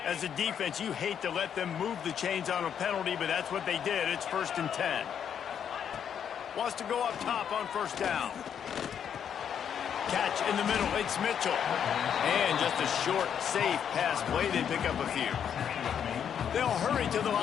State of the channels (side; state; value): right; quieter; 8.4 dB